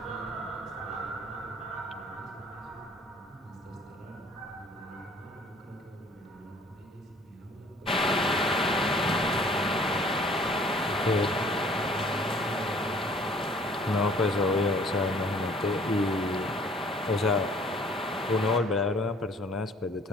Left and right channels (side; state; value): both; normal; correlation 0.55